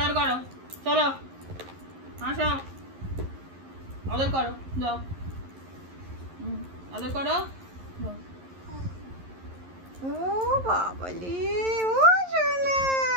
করো, চলো আসো, আদর করো, যাও, আদর করো। ও বাবালি, ও শোনা,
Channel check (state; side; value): late; left; 11 ms